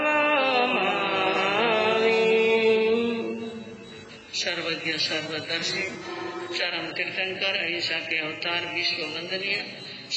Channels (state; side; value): identical; both; correlation 1.00